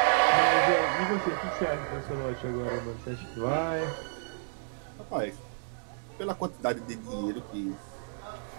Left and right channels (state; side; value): silent; left; digital silence